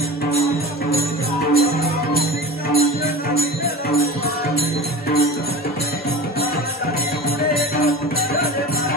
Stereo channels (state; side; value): normal; both; correlation 0.33